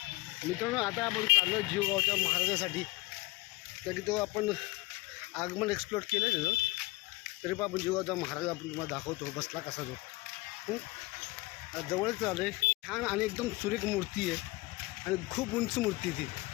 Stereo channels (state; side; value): quieter; right; 21.9 dB